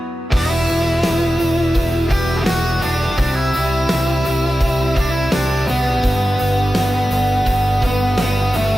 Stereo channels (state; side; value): normal; both; correlation 0.93